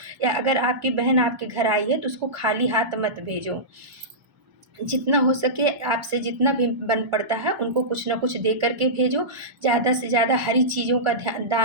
या अगर आपकी बहन आपके घर आई है तो उसको खाली हाथ मत भेजो। जितना हो सके आपसे जितना भी बन पड़ता है उनको कुछ न कुछ दे कर के भेजो। ज़्यादा से ज़्यादा हरी चीज़ों का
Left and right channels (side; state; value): left; late; 1.0 ms